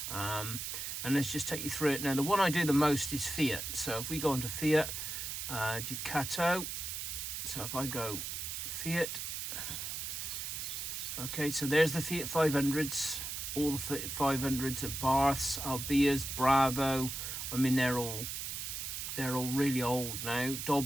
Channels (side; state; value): right; noise; hiss, 4 dB below the sound